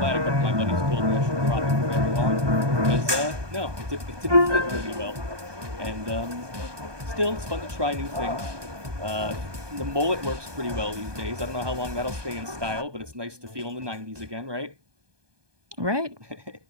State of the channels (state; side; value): late; left; 1.2 ms